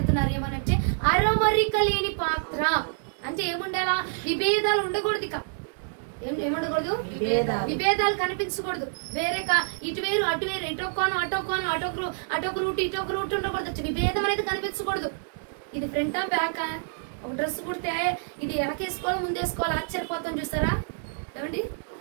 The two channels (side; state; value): left; silent; digital silence